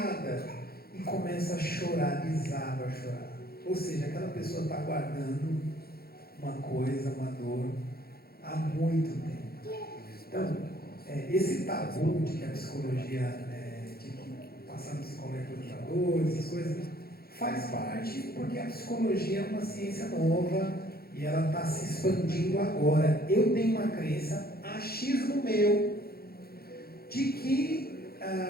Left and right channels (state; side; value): late; right; 0.45 ms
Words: e começa a chorar, desaba a chorar. Ou seja, aquela pessoa está guardando uma coisa, uma dor, há muito tempo. Então, esse tabu de que a psicologia, de que passar no psicólogo é torturador, essas coisas, faz parte porque a psicologia é uma ciência nova e ela está se expandindo agora. Eu tenho uma crença, achismo meu, de que